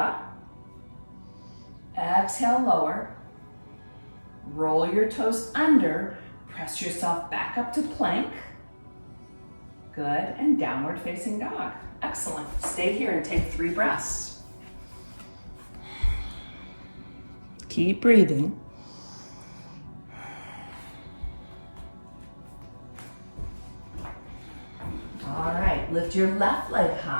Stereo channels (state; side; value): inverted; both; correlation -1.00